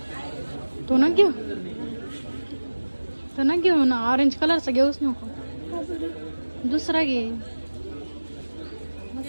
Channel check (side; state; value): both; inverted; correlation -1.00